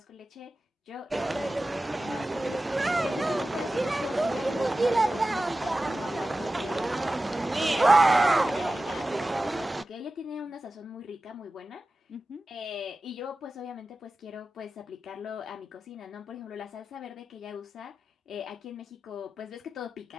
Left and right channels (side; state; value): both; normal; correlation 0.94